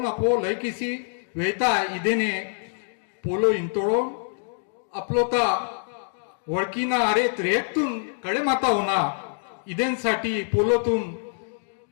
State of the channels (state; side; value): silent; right; digital silence